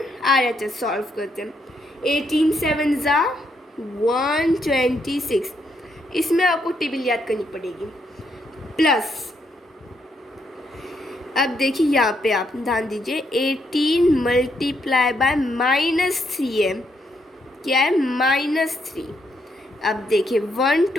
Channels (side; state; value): both; normal; correlation 0.76